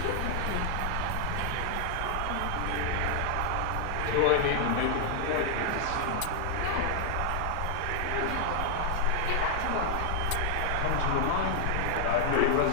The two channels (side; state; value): both; different; correlation 0.00